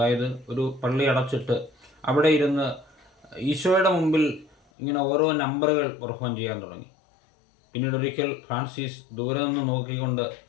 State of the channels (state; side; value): drops out; right; at 4.5 s